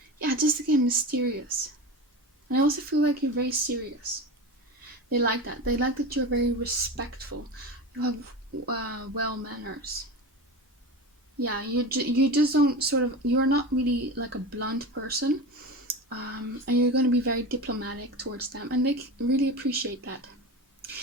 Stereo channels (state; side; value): normal; both; correlation 0.27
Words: yeah, just again, mysterious. And I also feel like you're very serious. They like that. They like that you're very respectful. You have well manners. Yeah, you just don't sort of, you're not really like a blunt person. And you're going to be very diplomatic towards them. And they really appreciate that.